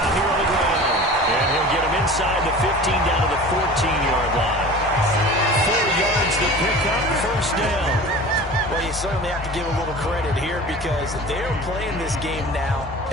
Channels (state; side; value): normal; both; correlation 0.39